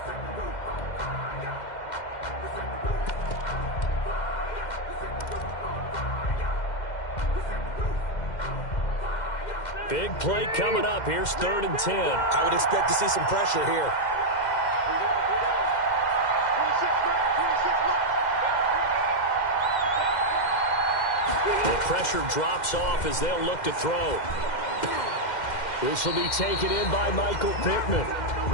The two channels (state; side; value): late; right; 2.1 ms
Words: Big play coming up. Here's 3rd and 10. I would expect to see some pressure here. The pressure drops off as they'll look to throw. This will be taken in by Michael Pittman.